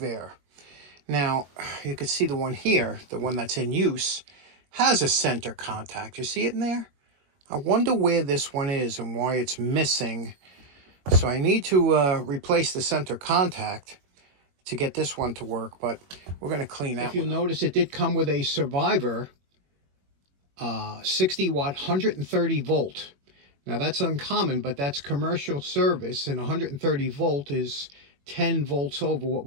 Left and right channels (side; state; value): left; late; 21 ms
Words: Now, you can see the one here, the one that's in use, has a center contact. You see it in there? I wonder where this one is and why it's missing. So I need to replace the center contact to get this one to work, but we're going to clean that. If you'll notice, it did come with a Survivor 60 watt 130 volt. Now that's uncommon, but that's commercial service, and 130 volt is 10 volts over what